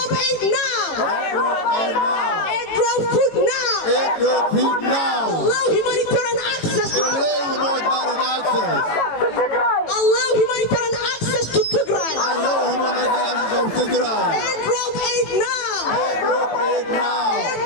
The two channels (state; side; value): late; right; 18 ms